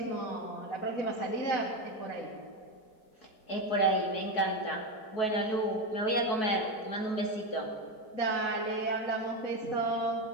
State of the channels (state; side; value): late; right; 4.7 ms